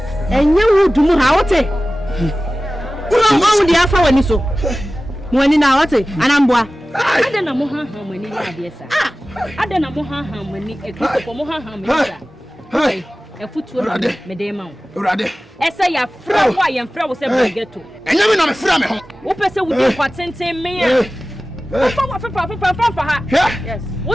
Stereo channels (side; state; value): both; normal; correlation 0.96